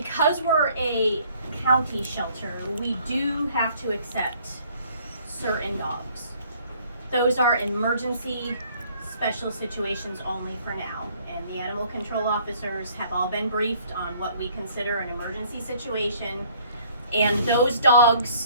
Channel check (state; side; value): inverted; both; correlation -0.59